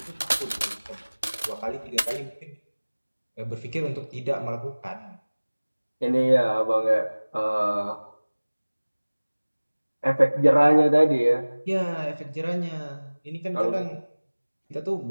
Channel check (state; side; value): inverted; both; correlation -1.00